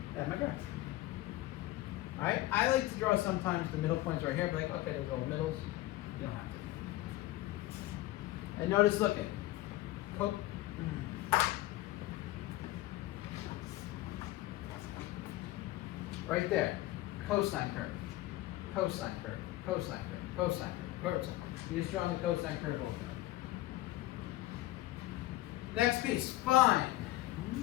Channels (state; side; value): quieter; right; 16.9 dB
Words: That's my graph. All right, I like to draw sometimes the middle points right here, but like, okay, those are all middles. You don't have to. And notice, look at right there, cosine curve, cosine curve, cosine curve, cosine curve, cosine. You're just drawing the cosine curve over. Next piece, find